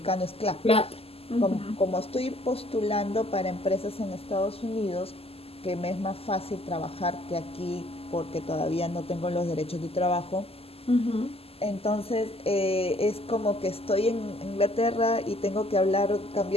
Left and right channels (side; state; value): right; late; 0.29 ms